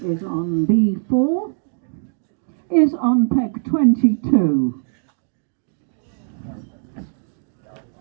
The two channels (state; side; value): silent; left; digital silence